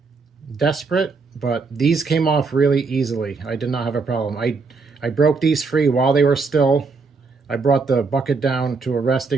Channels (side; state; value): left; quieter; 4.5 dB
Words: desperate, but these came off really easily. I did not have a problem. I broke these free while they were still. I brought the bucket down to a